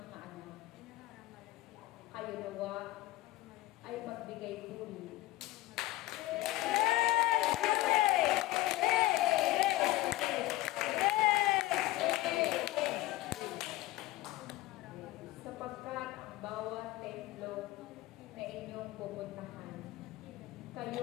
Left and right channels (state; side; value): quieter; right; 17.2 dB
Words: anak, kayo nawa ay magbigay puri. Sapagkat ang bawat templo na inyong pupuntahan,